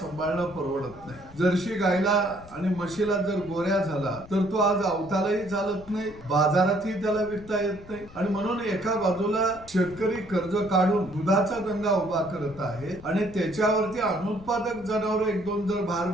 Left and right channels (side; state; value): left; noise; rumble, 20 dB below the sound